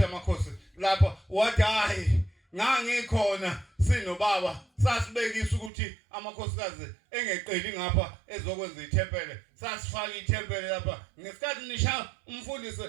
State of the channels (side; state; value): left; drops out; at 5.7 s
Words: yamakhosi lapha wathi hayi ngangikhona sinobaba sasibekisa ukuthi amakhosikazi engeqeli ngapha ezokwenza ithempele sasifaka ithempele lapha ngesikhathi nisha umfundisi